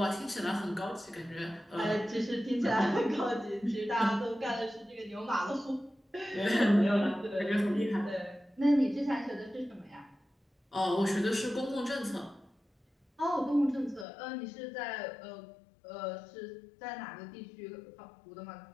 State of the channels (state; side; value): drops out; right; at 14.1 s